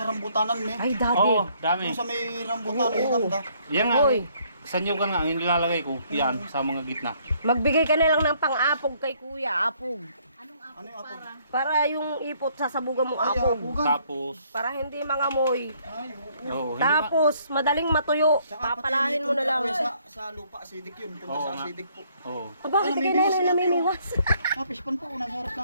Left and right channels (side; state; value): both; inverted; correlation -0.65